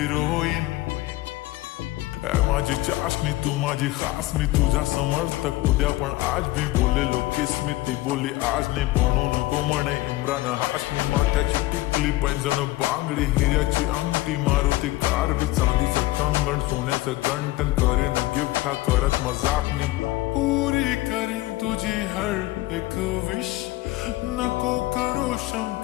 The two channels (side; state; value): right; quieter; 18.2 dB